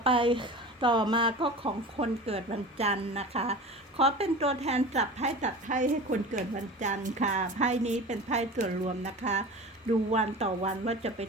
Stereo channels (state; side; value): normal; both; correlation 0.35